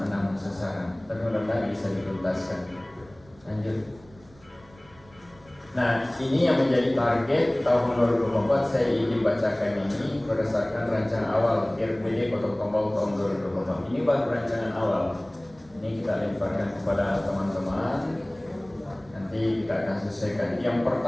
6 sasaran, tapi mudah-mudahan bisa dituntaskan. Lanjut. Nah, ini yang menjadi target tahun 2024. Saya ingin bacakan ini berdasarkan rancangan awal RPD Kota Pekanbaru tahun 2024. Ini baru rancangan awal. Ini kita lemparkan kepada teman-teman. Nanti kita akan selesaikan. Yang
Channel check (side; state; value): right; noise; rumble, 26 dB below the sound